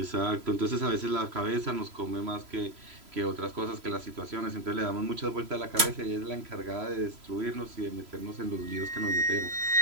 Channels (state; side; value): late; left; 3.0 ms